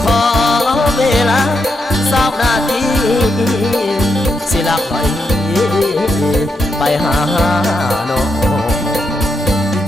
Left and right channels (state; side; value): normal; both; correlation 0.82